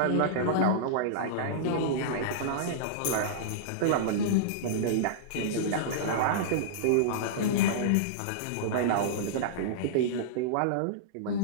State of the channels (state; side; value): different; both; correlation -0.03